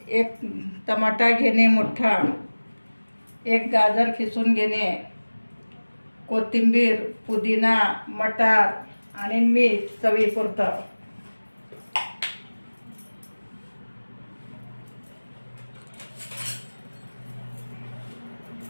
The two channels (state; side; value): inverted; both; correlation -1.00